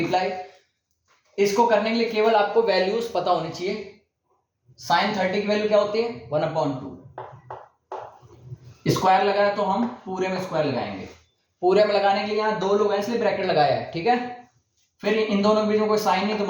इसको करने के लिए केवल आपको वैल्यूज पता होनी चाहिए। साइन 30 की वैल्यू क्या होती है? 1/2। स्क्वायर लगाया तो हम पूरे में स्क्वायर लगाएंगे। पूरे में लगाने के लिए यहां 2 लोग हैं इसलिए ब्रैकेट लगाया है, ठीक है। फिर इन दोनों के बीच में कोई साइन नहीं तो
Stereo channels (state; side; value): identical; both; correlation 1.00